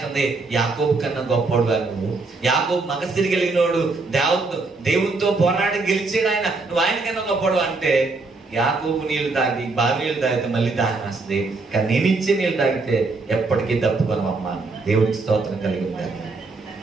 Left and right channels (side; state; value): left; quieter; 3.7 dB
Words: యాకోబు కన్నా గొప్పోడు నువ్వు, యాకోబు మగసిరి కలిగినోడు, దేవునితో పోరాడి గెలిచాడు ఆయన, నువ్వు ఆయన కన్నా గొప్పోడు అంటే. యాకోబు నీళ్లు తాగి బావి నీళ్ళు తాగితే మళ్ళీ దాహం వస్తుంది, కానీ నేను ఇచ్చే నీళ్ళు తాగితే ఎప్పటికీ తప్పుకోనమ్మా. దేవుడికి స్తోత్రం కలిగి ఉండాలి.